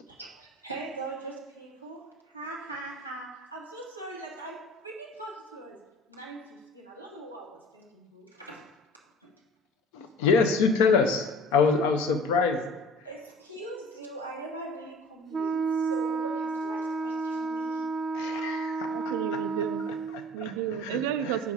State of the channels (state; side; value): normal; both; correlation 0.44